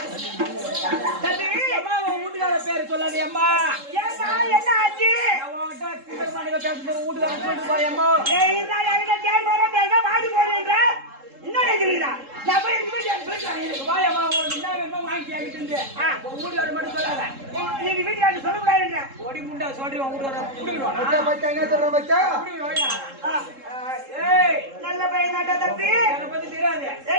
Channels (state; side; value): late; left; 3.7 ms